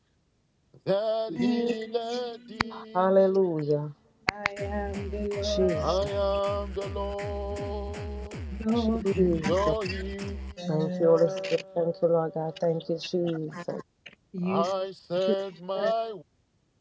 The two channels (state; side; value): identical; both; correlation 1.00